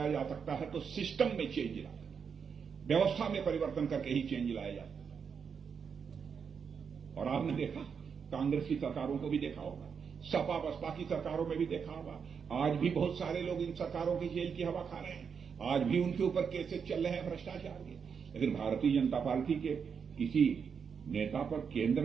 जा सकता है तो सिस्टम में चेंज लाकर, व्यवस्था में परिवर्तन करके ही चेंज लाया जा सकता है। और आपने देखा, कांग्रेस की सरकारों को भी देखा होगा, सपा बसपा की सरकारों में भी देखा होगा, आज भी बहुत सारे लोग इन सरकारों की जेल की हवा खा रहे हैं, आज भी उनके ऊपर केसेस चल रहे हैं भ्रष्टाचार के। लेकिन भारतीय जनता पार्टी के किसी नेता पर केंद्र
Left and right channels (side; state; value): left; quieter; 6.5 dB